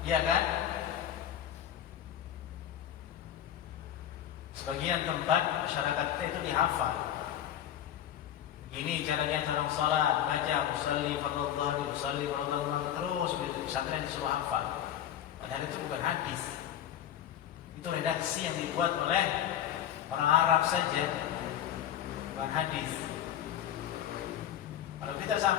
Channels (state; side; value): quieter; right; 10.9 dB